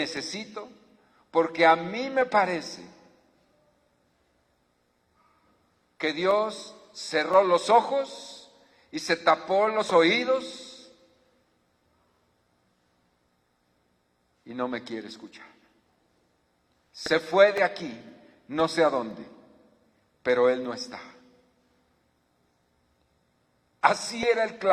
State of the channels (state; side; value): identical; both; correlation 1.00